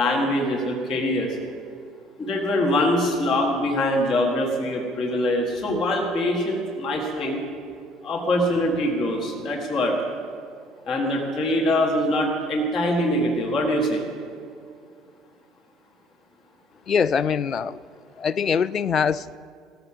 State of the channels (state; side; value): normal; both; correlation 0.61